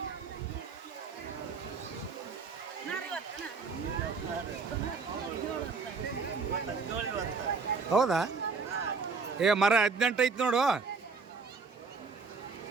ಹೌದಾ? ಮರ 18 ಐತಿ ನೋಡು.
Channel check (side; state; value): left; quieter; 4.6 dB